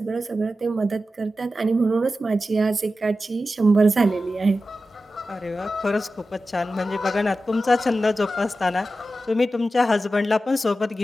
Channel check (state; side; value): normal; both; correlation 0.93